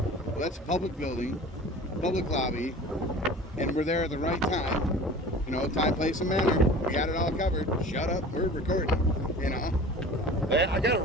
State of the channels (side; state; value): both; normal; correlation 0.40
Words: Well, that's a public building, public lobby, and we're there at the right time. Time, place, and manner. We got it all covered. Shut up, we're recording. I got